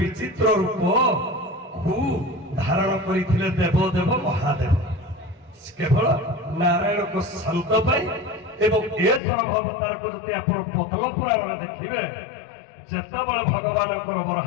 ବିଚିତ୍ର ରୂପକୁ ଧାରଣ କରିଥିଲେ ଦେବଦେବ ମହାଦେବ କେବଳ ନାରାୟଣଙ୍କ ଶାନ୍ତ ପାଇଁ ଏବଂ ଏ ସରଭ ଅବତାରକୁ ଯଦି ଆପଣ ପଦ୍ମ ପୁରାଣରେ ଦେଖିବେ ଯେତେବେଳେ ଭଗବାନଙ୍କର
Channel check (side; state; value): right; drops out; at 9.2 s